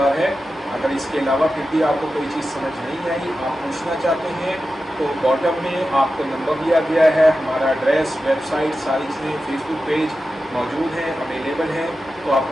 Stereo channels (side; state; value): both; normal; correlation 0.92